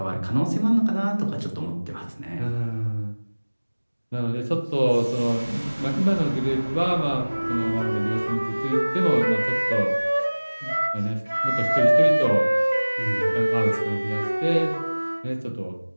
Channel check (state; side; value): inverted; both; correlation -1.00